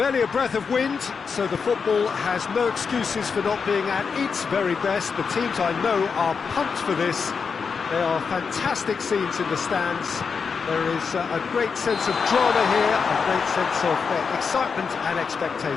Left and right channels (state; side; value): quieter; right; 5.6 dB